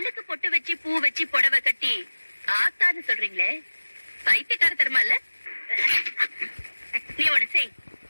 பொட்டு வச்சு பூ வச்சு புடவை கட்டி ஆத்தான்னு சொல்றீங்களே, பைத்தியக்கார தருமா இல்ல? நீ ஒண்ணு செய்,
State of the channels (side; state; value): both; inverted; correlation -1.00